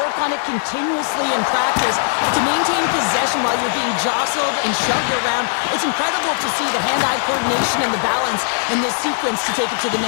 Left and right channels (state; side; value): silent; right; 63 dB below the other